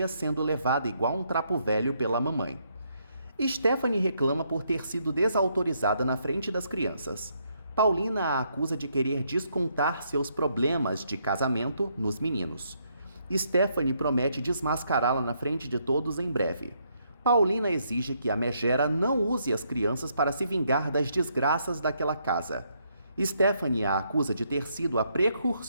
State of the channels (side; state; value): both; inverted; correlation -0.74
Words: sendo levada igual um trapo velho pela mamãe. Stephanie reclama por ter sido desautorizada na frente das crianças. Paulina a acusa de querer descontar seus problemas de casamento nos meninos. Stephanie promete desmascará-la na frente de todos em breve. Paulina exige que a megera não use as crianças para se vingar das desgraças daquela casa. Stephanie a acusa de ter sido a